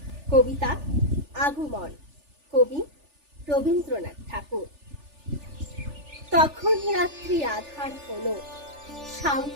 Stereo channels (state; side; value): late; left; 3.4 ms